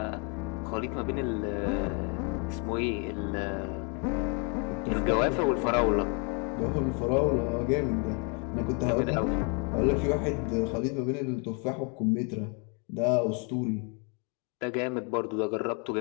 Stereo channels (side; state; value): right; quieter; 36.0 dB